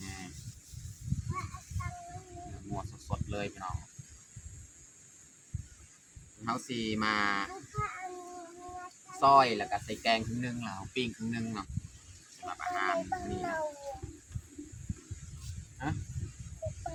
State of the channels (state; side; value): identical; both; correlation 1.00